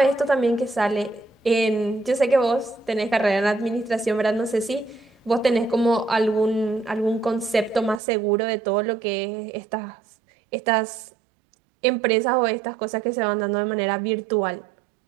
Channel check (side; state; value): left; drops out; at 8.0 s